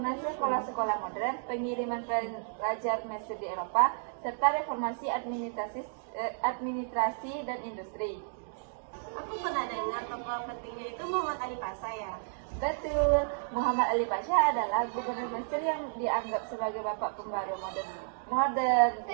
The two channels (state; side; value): silent; left; digital silence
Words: sekolah-sekolah modern, pengiriman pelajar Mesir di Eropa, serta reformasi administrasi dan industri. Aku pernah dengar tokoh pentingnya itu Muhammad Ali Pasha ya. Betul, Muhammad Ali Pasha adalah gubernur Mesir yang dianggap sebagai bapak pembaru modern